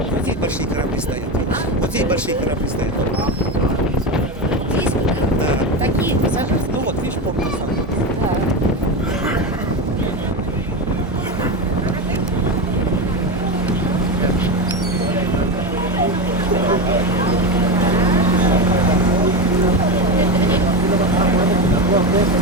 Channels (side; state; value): both; normal; correlation 0.18